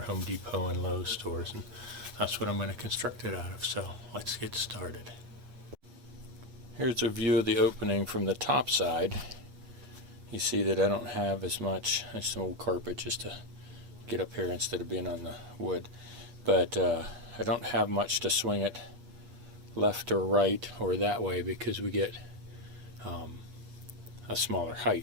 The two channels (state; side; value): late; left; 8.3 ms